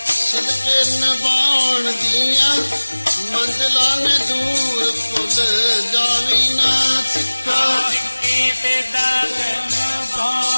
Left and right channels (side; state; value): both; inverted; correlation -1.00